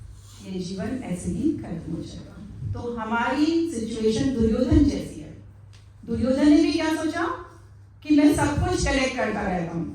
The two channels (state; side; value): identical; both; correlation 1.00